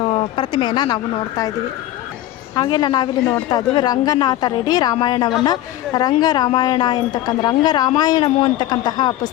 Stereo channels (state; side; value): quieter; right; 14.3 dB